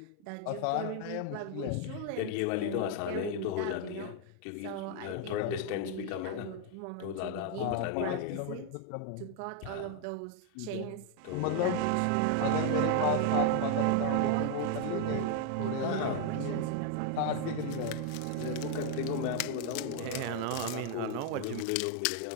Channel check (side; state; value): both; different; correlation 0.00